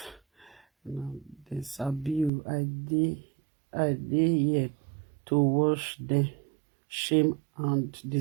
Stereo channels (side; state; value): left; drops out; at 2.3 s